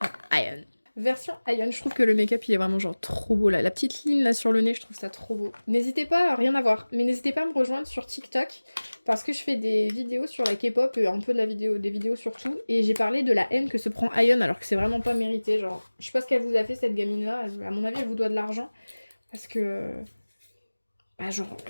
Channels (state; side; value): inverted; both; correlation -1.00